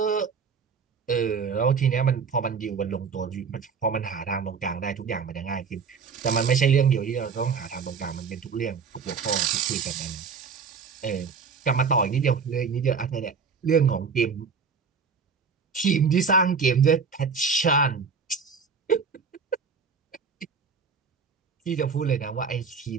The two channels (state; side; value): quieter; left; 5.6 dB